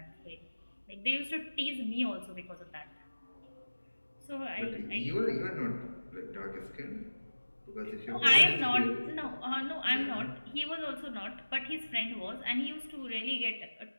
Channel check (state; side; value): inverted; both; correlation -1.00